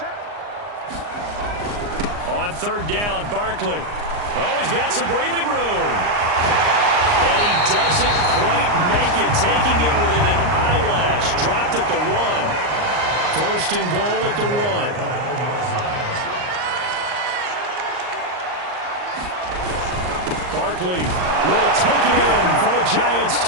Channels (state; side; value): late; left; 39 ms